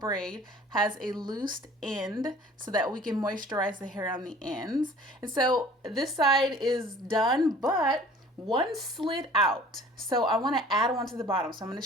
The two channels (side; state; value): both; normal; correlation 0.49